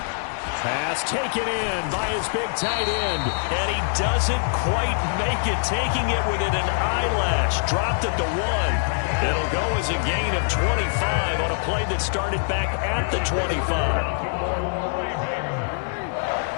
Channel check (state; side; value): silent; right; digital silence